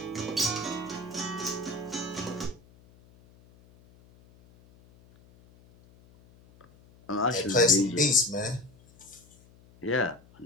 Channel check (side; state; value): left; noise; hum, 27 dB below the sound